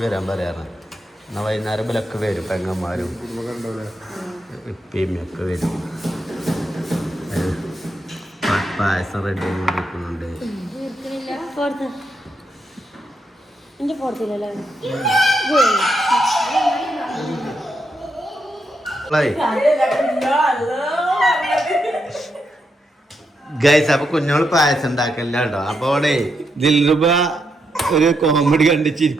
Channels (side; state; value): both; normal; correlation 0.82